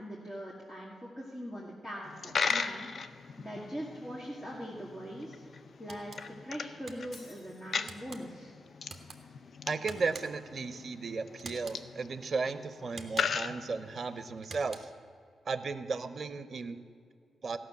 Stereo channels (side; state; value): both; normal; correlation 0.84